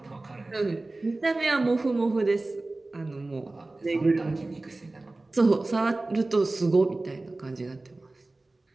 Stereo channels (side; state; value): left; quieter; 3.0 dB